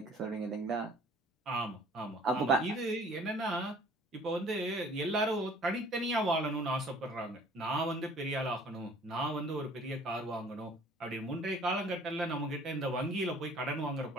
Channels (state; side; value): normal; both; correlation 0.53